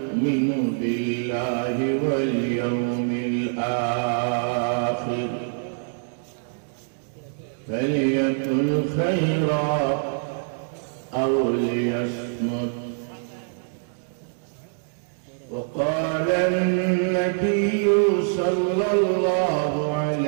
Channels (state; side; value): silent; left; digital silence